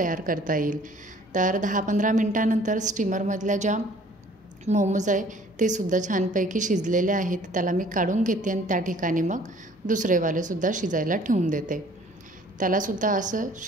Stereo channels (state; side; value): normal; both; correlation 0.54